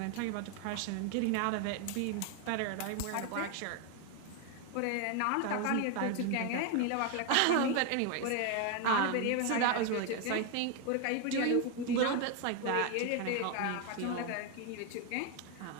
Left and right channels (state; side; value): different; both; correlation 0.01